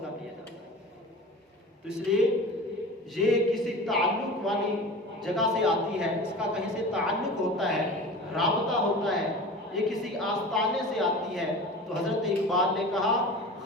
کر لیا جاتا ہے۔ تو اس لیے یہ کسی تعلق والی جگہ سے آتی ہے، اس کا کہیں سے تعلق ہوتا ہے، رابطہ ہوتا ہے، یہ کسی آستانے سے آتی ہے۔ تو حضرت اقبال نے کہا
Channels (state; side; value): normal; both; correlation 0.35